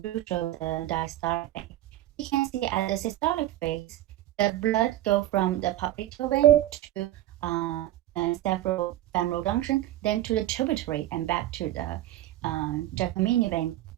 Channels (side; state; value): left; quieter; 14.2 dB